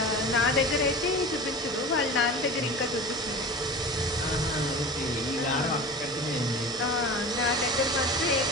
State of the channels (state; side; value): normal; both; correlation 0.34